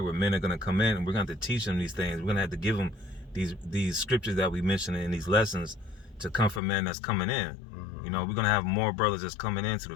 where men are gonna come in, and we're gonna have to teach them these things. We're gonna have to give them these scriptures that we mentioned in these lessons to come from men that's coming in. Mm-hmm. You know, we're gonna have more brothers that's coming into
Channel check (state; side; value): drops out; right; at 6.6 s